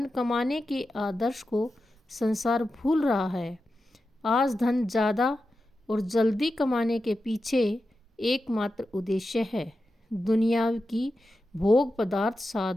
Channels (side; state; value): both; normal; correlation 0.91